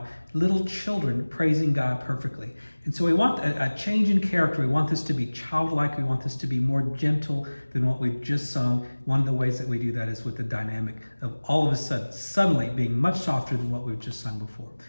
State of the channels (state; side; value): inverted; both; correlation -1.00